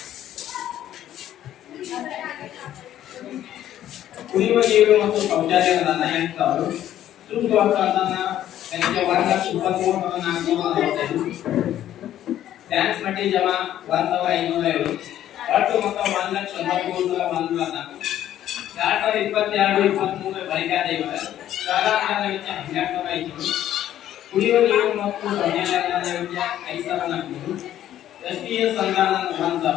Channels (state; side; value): quieter; right; 11.9 dB